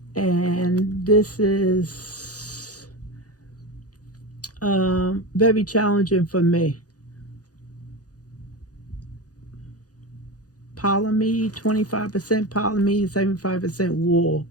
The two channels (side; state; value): right; late; 0.68 ms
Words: And this is very challenging for me. Polyamide, 25% polyamide, 75% wool.